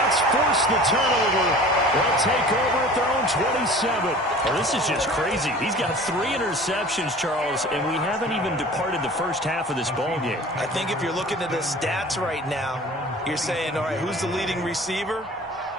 force the turnover. They'll take over at their own 27. Well, this is just crazy. He's got 3 interceptions, Charles, and we haven't even departed the first half of this ball game. I think if you're looking at the stats right now, you're saying, all right, who's the leading receiver?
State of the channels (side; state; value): both; normal; correlation 0.43